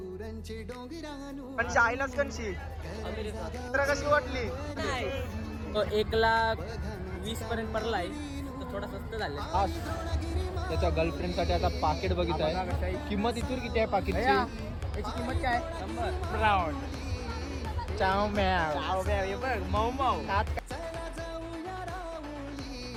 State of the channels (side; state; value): both; identical; correlation 1.00